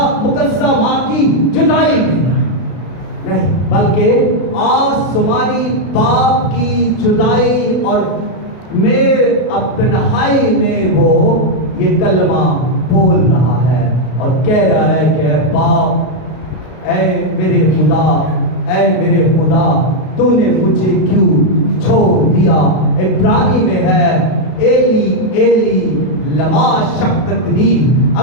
मुकद्दसा मां की जुदाई में नहीं, बल्कि आसमानी बाप की जुदाई और में अब तन्हाई में वो ये कलमा बोल रहा है और कह रहा है कि ऐ बाप, ऐ मेरे खुदा तूने मुझे क्यों छोड़ दिया। इब्रानी में है एली एली लमा शक्तनी।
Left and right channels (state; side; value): late; right; 32 ms